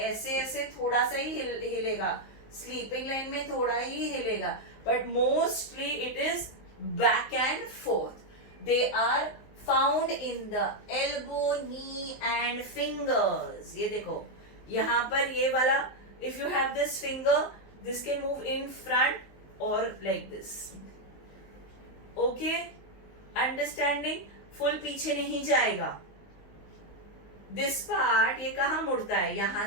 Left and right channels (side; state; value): right; late; 19 ms